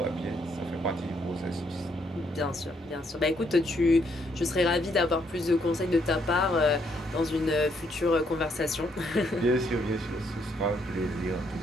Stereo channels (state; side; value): normal; both; correlation 0.72